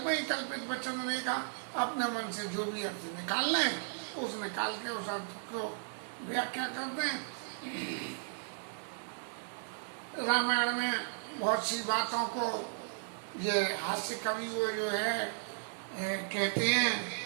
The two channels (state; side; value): silent; left; digital silence